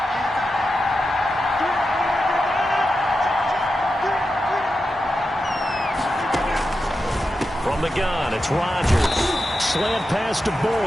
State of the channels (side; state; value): both; normal; correlation 0.90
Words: From the gun, it's Rodgers. Slant pass to